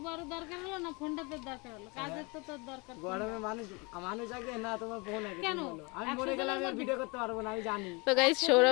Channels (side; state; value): right; quieter; 28.4 dB